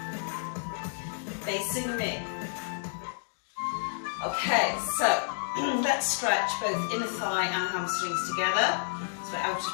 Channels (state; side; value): silent; right; digital silence